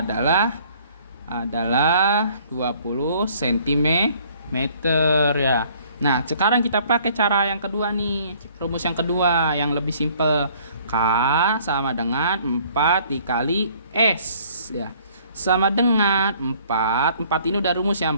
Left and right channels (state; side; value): inverted; both; correlation -0.58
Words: 20 cm ya. Nah, sekarang kita pakai cara yang kedua nih. Rumus yang kedua yang lebih simpel. K sama dengan 4 dikali S ya. Sama dengan 4 ini udah rumus ya.